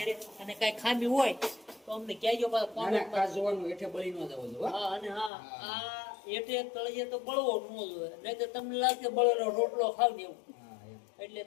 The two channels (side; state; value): right; drops out; at 5.3 s